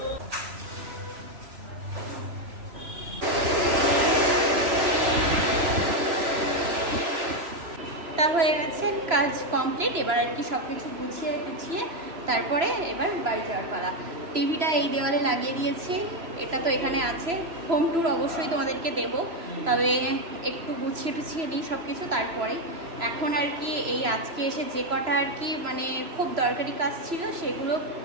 তা হয়ে গেছে, কাজ কমপ্লিট। এবার আর কি সবকিছু গুছিয়ে তারপরে এবার বাড়ি যাওয়ার পালা। টিভিটা এই দেওয়ালে লাগিয়ে দিয়েছি, এটা তো এখানে আছে। হোম ট্যুর অবশ্যই তোমাদেরকে দেব, তবে একটু গুছিয়ে নিই সব কিছু তারপরে। এখন আর কি এই আজকে এসে যে কটা আর কি মানে খুব দরকারি কাজ ছিল সেগুলো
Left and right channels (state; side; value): late; left; 3.0 ms